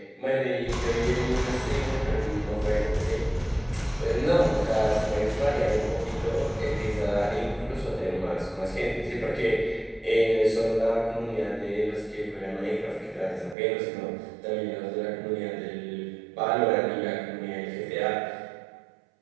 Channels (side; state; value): left; drops out; at 13.6 s